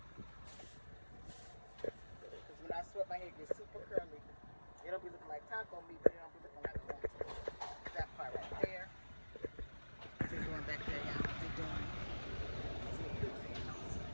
When I sweat, my hair gets super curly. It'll be looking like taco meat, but it don't be looking like corn. That part right there. What's it doing back there, y'all? What's it doing?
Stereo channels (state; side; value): inverted; both; correlation -1.00